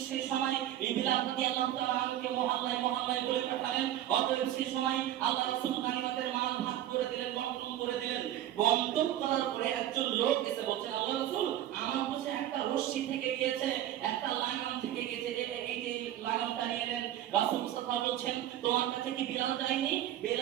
সেই সময় বিলাল রাদিয়াল্লাহু তাআলা আনহুকে মহল্লায় মহল্লায় বলে পাঠালেন। অতএব সেই সময় আল্লাহ রাসূল গানিমতের মাল ভাগ করে দিলেন, বন্টন করে দিলেন। বন্টন করার পরে একজন লোক এসে বলছে, আল্লাহ রাসূল, আমার কাছে একটা রশি থেকে গিয়েছে, একটা লাগাম থেকে গিয়েছে, এই যে লাগামটা নিয়ে নেন। রাসূল সাল্লাল্লাহু বলছেন, তোমার কাছে কি বিলাল যায়নি?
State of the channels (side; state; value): left; quieter; 12.3 dB